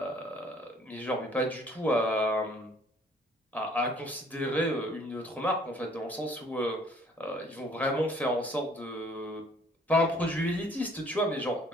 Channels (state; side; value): normal; both; correlation 0.59